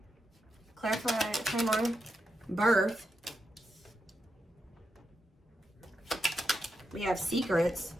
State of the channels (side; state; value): both; normal; correlation 0.86